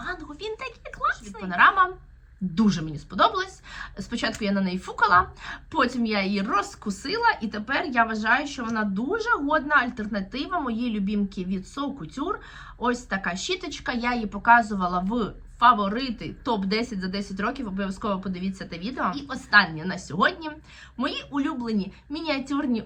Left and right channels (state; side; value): identical; both; correlation 1.00